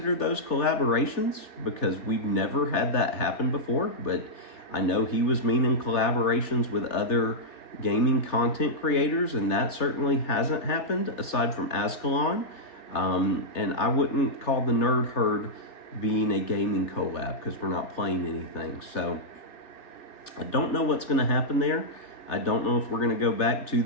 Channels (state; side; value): late; right; 3.4 ms